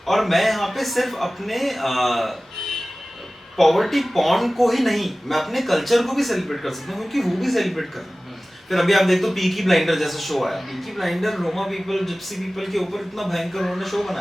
और मैं यहाँ पे सिर्फ अपने पॉवर्टी पॉर्न को ही नहीं, मैं अपने कल्चर को भी सेलिब्रेट कर सकता हूँ, क्योंकि वो भी सेलिब्रेट कर रहे हैं। फिर अभी आप देखो पीकी ब्लाइंडर जैसा शो आया, Peaky blinder Roma people, Gypsy people के ऊपर इतना भयंकर उन्होंने शो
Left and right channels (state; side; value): normal; both; correlation 0.97